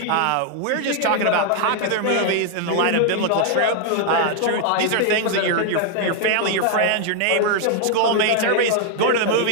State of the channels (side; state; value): both; different; correlation 0.00